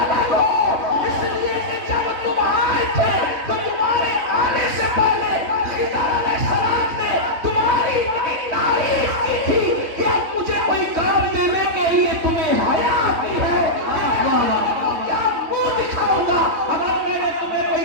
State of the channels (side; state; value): left; late; 3.2 ms